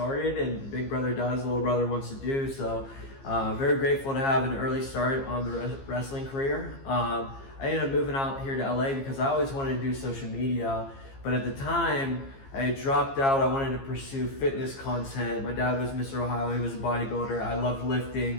and big brother does, little brother wants to do. So very grateful to have an early start on the wrestling career. I ended up moving out here to LA because I always wanted to do social media. But at the time, I had dropped out. I wanted to pursue fitness content. My dad was Mr. Ohio. He was a bodybuilder. I loved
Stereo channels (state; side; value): late; right; 15 ms